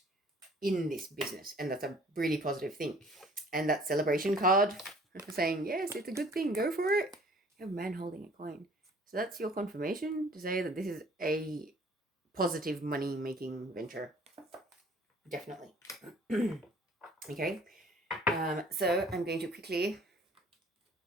in this business, and that's a really positive thing. And that celebration card saying, yes, it's a good thing, go for it. You have a man holding a coin. So that's your confirmation to say that this is a positive money-making venture. Definitely. Okay. So I'm going to quickly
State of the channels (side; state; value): both; normal; correlation 0.54